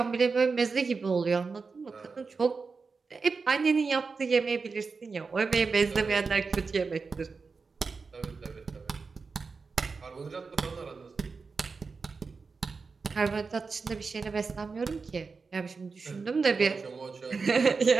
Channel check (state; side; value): quieter; left; 4.6 dB